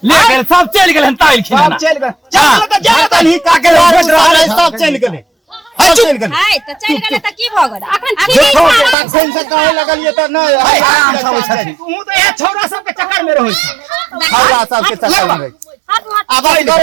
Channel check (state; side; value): drops out; left; at 9.0 s